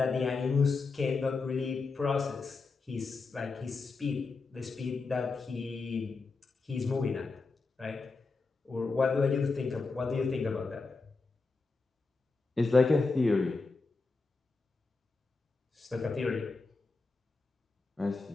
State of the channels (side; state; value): right; quieter; 4.1 dB